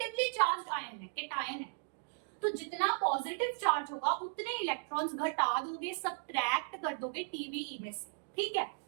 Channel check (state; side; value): silent; left; digital silence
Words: चार्ज आयन है, केटायन है, तो जितना पॉजिटिव चार्ज होगा उतने इलेक्ट्रॉन्स घटा दोगे, सब्ट्रैक्ट कर दोगे TeVe में से। ठीक है,